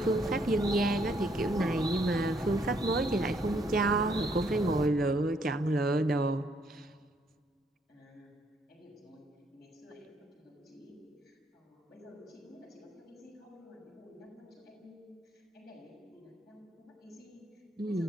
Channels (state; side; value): normal; both; correlation 0.70